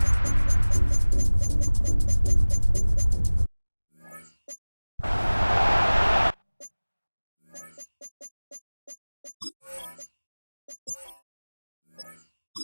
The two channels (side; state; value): both; inverted; correlation -1.00